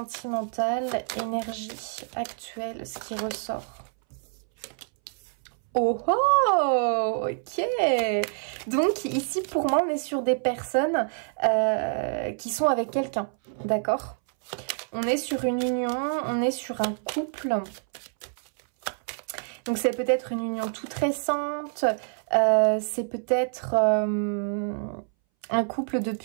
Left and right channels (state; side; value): silent; left; 60 dB below the other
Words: énergie actuelle, ce qui ressort. Oh oh, ok. Donc ici, pour moi, on est sur des personnes qui sont avec quelqu'un, d'accord? On est sur une union, on est sur un couple. Donc c'est peut-être une union toute récente, c'est peut-être un couple